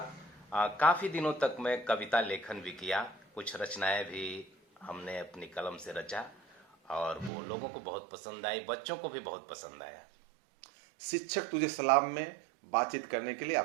काफ़ी दिनों तक मैं कविता लेखन भी किया। कुछ रचनाएं भी हमने अपनी कलम से रचा और वो लोगों को बहुत पसंद आई, बच्चों को भी बहुत पसंद आया। शिक्षक तुझे सलाम में बातचीत करने के लिए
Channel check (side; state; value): left; drops out; at 7.3 s